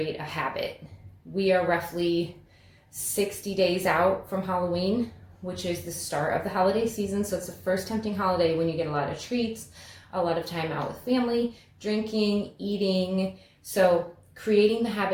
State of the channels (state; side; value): identical; both; correlation 1.00